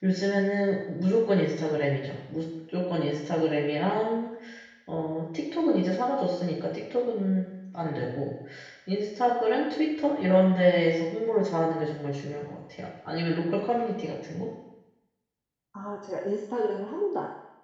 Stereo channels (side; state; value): both; identical; correlation 1.00